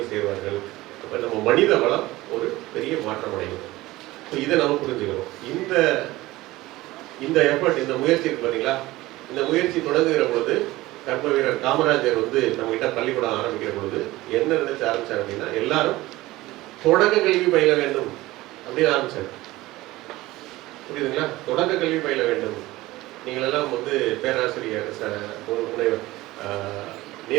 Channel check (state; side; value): quieter; left; 18.4 dB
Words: சேருவார்கள். அப்போ நம்ம மனித வளம் ஒரு பெரிய மாற்றம் அடையும். ஸோ இதை நம்ம புரிஞ்சுக்கணும். இந்த எஃபர்ட், இந்த முயற்சி இருக்கு பார்த்தீங்களா, இந்த முயற்சி தொடங்குகிற பொழுது கர்ம வீரர் காமராஜர் வந்து நம்ம கிட்ட பள்ளிக்கூடம் ஆரம்பிக்கிற பொழுது என்ன நினைச்சு ஆரம்பிச்சார் அப்படின்னா, எல்லாரும் தொடக்க கல்வி பயில வேண்டும் அப்படின்னு ஆரம்பிச்சார். புரியுதுங்களா? தொடக்க கல்வி பயில வேண்டும். நீங்கள் எல்லாம் வந்து பேராசிரியர் முனைவர்